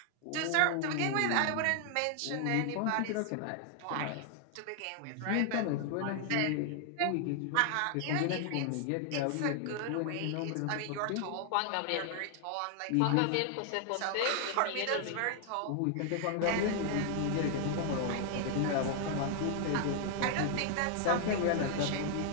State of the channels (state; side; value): different; both; correlation 0.00